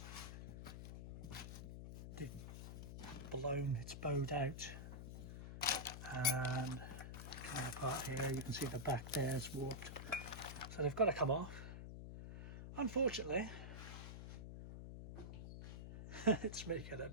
They've blown, it's bowed out and coming apart here. You can see the back there is warped, so they've got to come off. Unfortunately, it's making a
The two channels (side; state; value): left; noise; hum, 8 dB below the sound